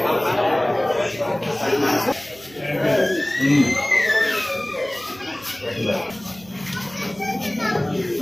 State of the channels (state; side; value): noise; right; hum, 23 dB below the sound